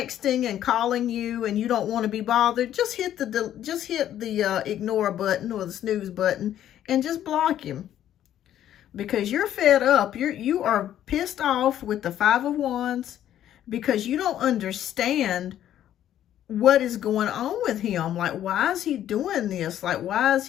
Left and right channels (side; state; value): right; quieter; 11.4 dB